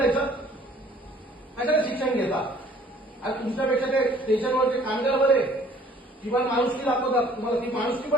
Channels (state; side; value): normal; both; correlation 0.56